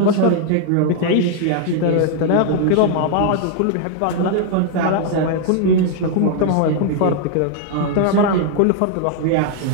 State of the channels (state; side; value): different; both; correlation 0.00